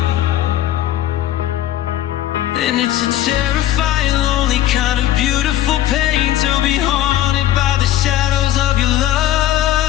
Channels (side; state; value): right; quieter; 13.1 dB